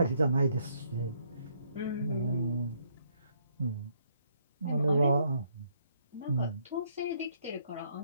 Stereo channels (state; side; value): inverted; both; correlation -0.70